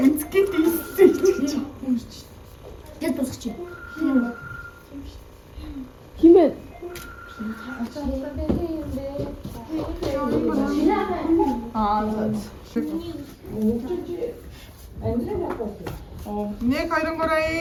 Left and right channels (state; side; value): identical; both; correlation 1.00